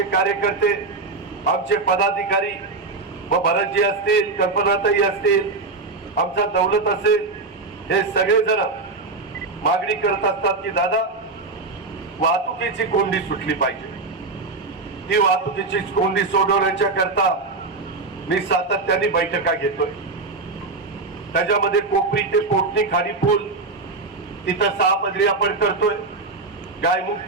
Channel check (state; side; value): quieter; left; 3.7 dB